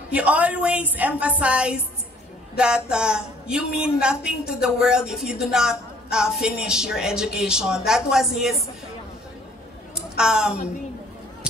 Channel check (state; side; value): normal; both; correlation 0.58